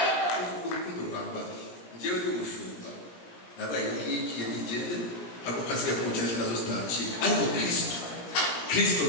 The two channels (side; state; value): right; late; 17 ms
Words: Urukundo rwambaye. Njyewe ndi umushumba. Nabaye n'igihe nigende ako kasiga kumucyashya nazo zitakira. Ariko Kristo